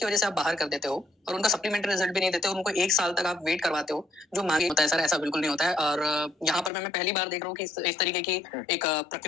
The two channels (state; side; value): drops out; right; at 6.7 s